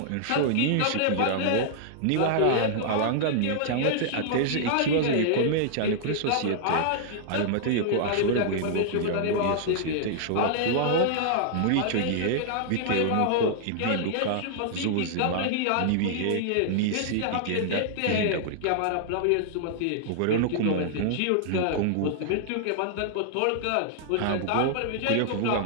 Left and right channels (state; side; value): different; both; correlation -0.01